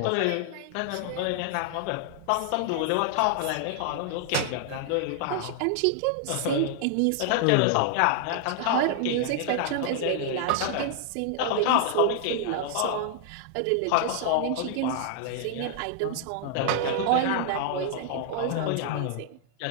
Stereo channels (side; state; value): both; different; correlation 0.00